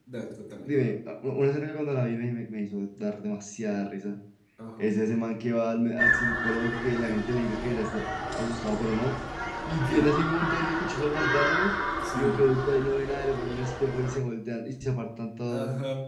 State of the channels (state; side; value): identical; both; correlation 1.00